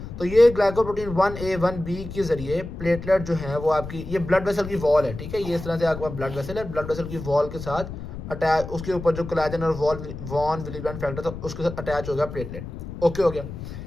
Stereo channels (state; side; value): noise; left; rumble, 9 dB below the sound